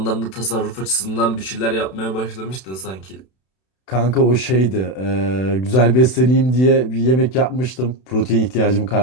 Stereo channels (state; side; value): late; right; 32 ms